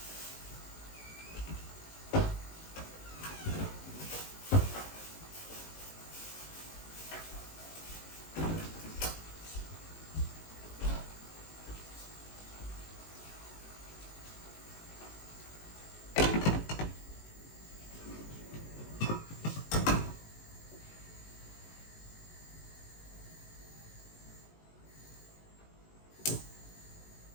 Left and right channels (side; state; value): right; late; 19 ms